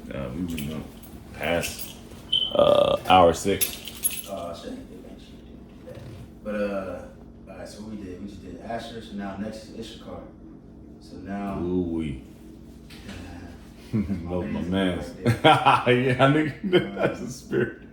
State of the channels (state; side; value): identical; both; correlation 1.00